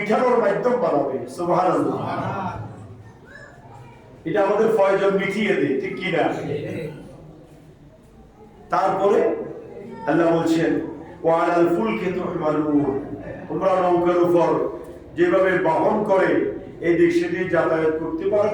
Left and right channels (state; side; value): identical; both; correlation 1.00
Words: মাধ্যম বানাবে। সুবহানাল্লাহ। এটা আমাদের প্রয়োজন মিটিয়ে দেয়, ঠিক কি না? তারপরে আল্লাহ বলছেন ওয়া আলাল ফুলকি তুহমালুন, তোমরা নৌকার উপর যেভাবে বহন করে এই দিক সেদিক যাতায়াত করতে